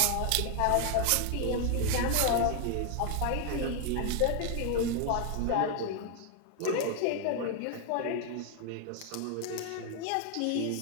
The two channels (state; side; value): different; both; correlation 0.00